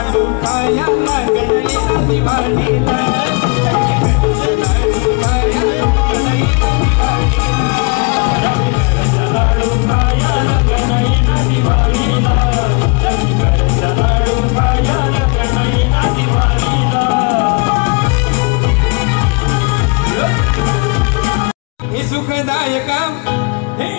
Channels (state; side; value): quieter; right; 31.8 dB